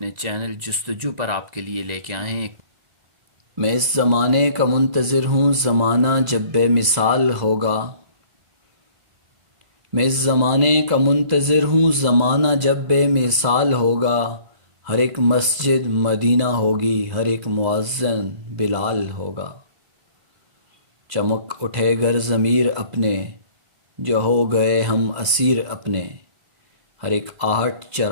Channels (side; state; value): left; late; 2.0 ms